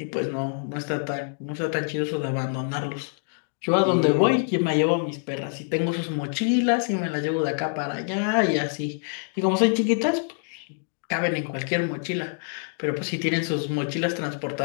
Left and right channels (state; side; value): silent; right; 61 dB below the other